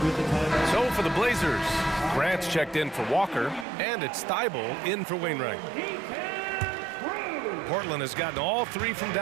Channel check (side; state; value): left; drops out; at 3.7 s